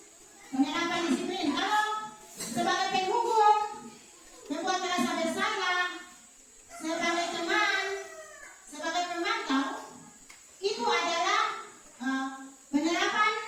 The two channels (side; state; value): both; identical; correlation 1.00